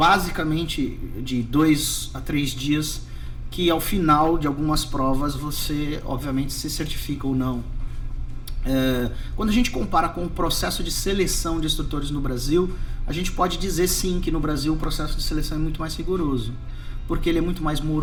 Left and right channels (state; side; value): identical; both; correlation 1.00